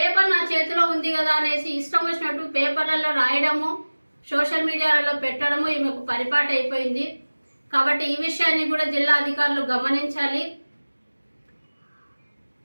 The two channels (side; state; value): both; inverted; correlation -1.00